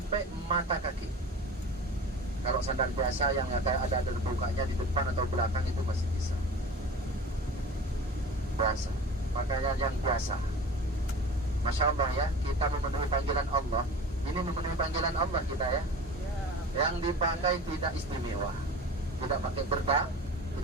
mata kaki. Kalau sandal biasa yang ada bukanya di depan atau belakang itu masih bisa. Biasa, pakaian yang biasa. Masya Allah ya, kita memenuhi panggilan Allah. Ini memenuhi panggilan Allah kita ya. Yang dipakai tidak istimewa, tidak pakai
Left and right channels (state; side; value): normal; both; correlation 0.36